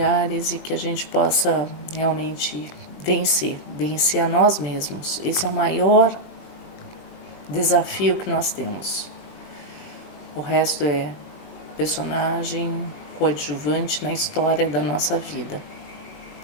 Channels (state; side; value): late; right; 21 ms